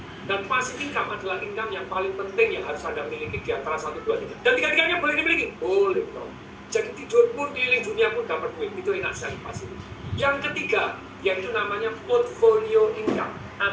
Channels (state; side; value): identical; both; correlation 1.00